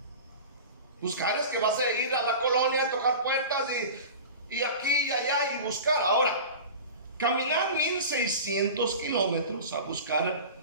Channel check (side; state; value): both; inverted; correlation -0.34